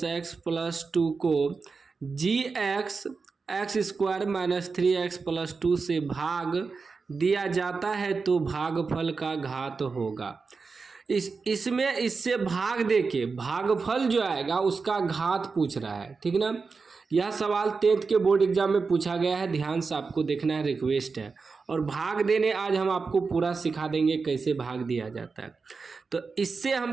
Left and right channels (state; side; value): quieter; left; 4.6 dB